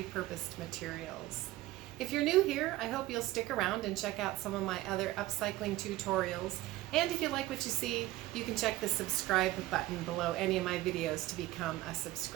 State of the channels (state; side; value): quieter; left; 17.2 dB